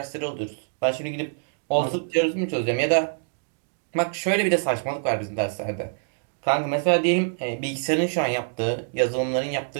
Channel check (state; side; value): silent; left; digital silence